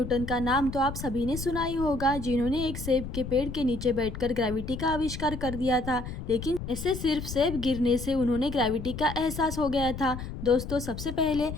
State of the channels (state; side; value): noise; left; rumble, 8 dB below the sound